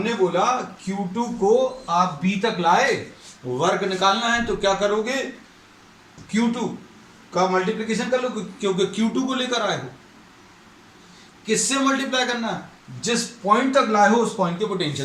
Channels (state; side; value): identical; both; correlation 1.00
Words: बोला Q2 को आप B तक लाए, वर्क निकालना है तो क्या करोगे, Q2 का मल्टीप्लिकेशन कर लो, क्योंकि Q2 को लेकर आए हो। किससे मल्टीप्लाई करना है, जिस पॉइंट तक लाए हो उस पॉइंट के